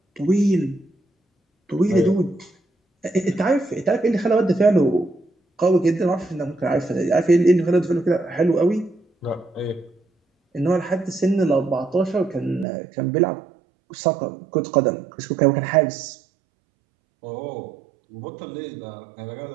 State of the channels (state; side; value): drops out; left; at 12.7 s